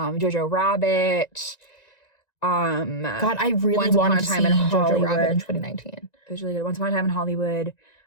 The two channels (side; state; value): right; late; 1.9 ms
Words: Rabbit. God, I really wanted to see Jojo Rabbit in 2019. It was really good. Once Upon a Time in Hollywood.